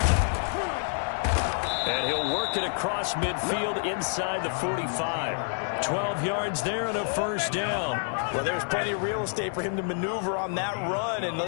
And he'll work it across midfield inside the 45. 12 yards there and a first down. Well, there's plenty of real estate for him to maneuver on that run, and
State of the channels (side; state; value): right; silent; digital silence